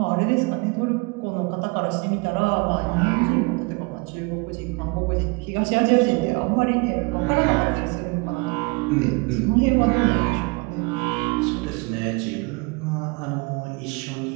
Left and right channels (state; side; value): quieter; left; 29.1 dB